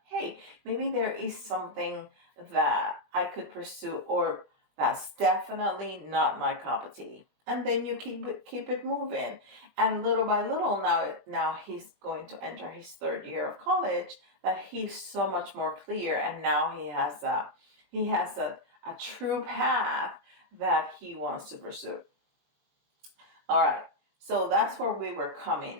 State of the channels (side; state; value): left; late; 21 ms